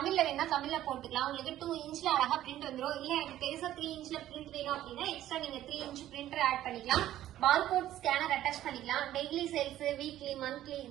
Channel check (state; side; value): quieter; left; 13.1 dB